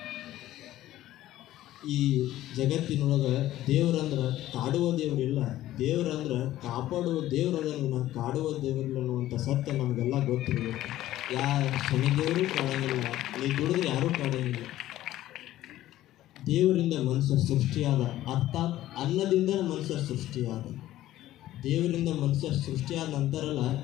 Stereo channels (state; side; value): quieter; right; 14.3 dB